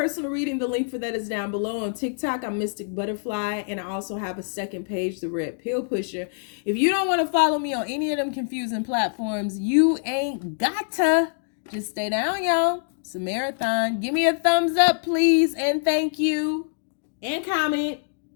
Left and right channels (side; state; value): right; silent; digital silence